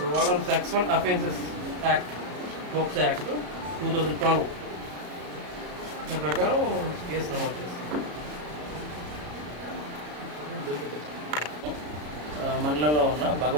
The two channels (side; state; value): left; late; 34 ms